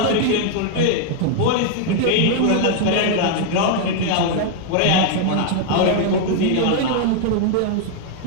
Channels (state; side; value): different; both; correlation 0.00